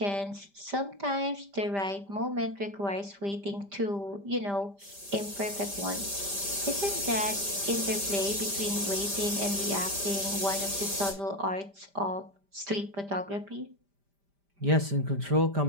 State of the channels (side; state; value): left; late; 5.0 ms